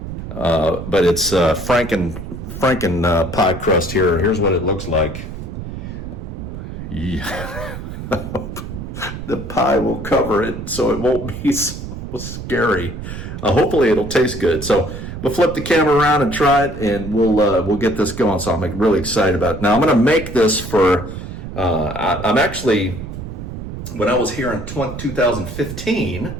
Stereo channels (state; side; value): noise; right; rumble, 9 dB below the sound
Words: But it's Franken pie crust here. Here's what it looks like. Yeah. The pie will cover it, so it won't be so scary. Hopefully, it'll taste good. So we'll flip the camera around and try it, and we'll get this going. So I'm really excited about it. Now I'm going to make this for. I'm actually. When I was here in